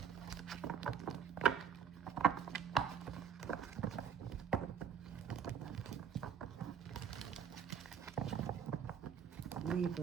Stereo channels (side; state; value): left; quieter; 7.8 dB